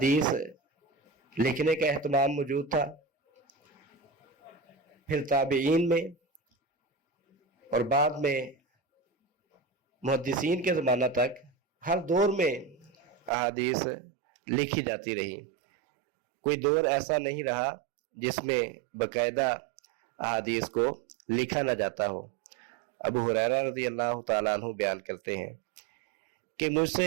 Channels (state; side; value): drops out; left; at 13.3 s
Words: لکھنے کا اہتمام موجود تھا، پھر تابعین میں، اور بعد میں محدثین کے زمانہ تک ہر دور میں احادیث لکھی جاتی رہی۔ کوئی دور ایسا نہیں رہا جس میں باقاعدہ احادیث کو لکھا نہ جاتا ہو۔ ابو ہریرہ رضی اللہ تعالیٰ عنہ بیان کرتے ہیں کہ مجھ